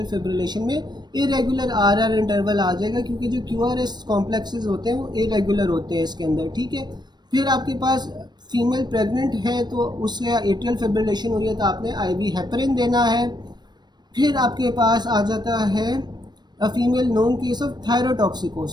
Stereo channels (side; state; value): left; late; 0.21 ms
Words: फिब्रिलेशन में इरेगुलर आरआर इंटरवल आ जाएगा, क्योंकि जो क्यूआरएस कॉम्प्लेक्सेस होते हैं वो इरेगुलर होते हैं इसके अंदर। ठीक है, फिर आपके पास फीमेल प्रेग्नेंट है तो उससे एट्रियल फिब्रिलेशन हुई है तो आपने आईवी हेपरिन देना है। फिर आपके पास आ जाता है a female known case of